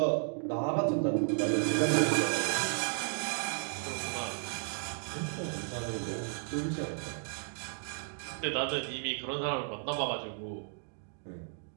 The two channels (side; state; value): left; silent; digital silence